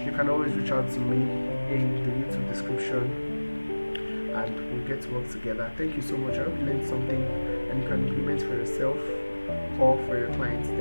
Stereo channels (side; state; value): both; inverted; correlation -1.00